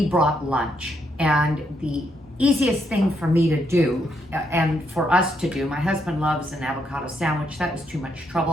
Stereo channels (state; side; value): normal; both; correlation 0.77